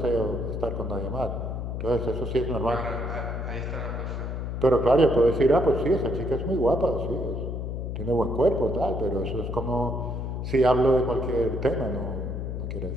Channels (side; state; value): left; noise; hum, 4 dB below the sound